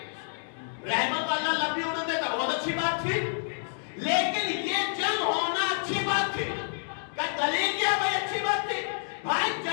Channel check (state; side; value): silent; right; digital silence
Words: رہبر کو اللہ لمبی عمر دیتا, بہت اچھی بات تھی. لیکن یہ جنگ ہونا اچھی بات تھی. کہ دلیل کیا بھائی اچھی بات تھی. بھائی